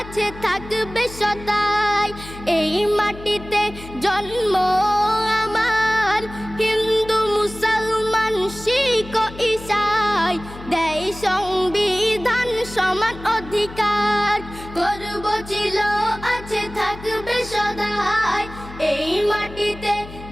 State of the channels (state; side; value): noise; left; hum, 15 dB below the sound